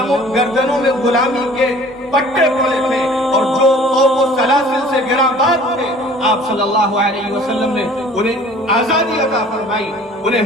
میں غلامی کے پٹے پڑے تھے اور جو قوم و سلاسل سے گراباد تھے، آپ صلی اللہ علیہ وسلم نے انہیں آزادی عطا فرمائی،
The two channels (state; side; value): normal; both; correlation 0.49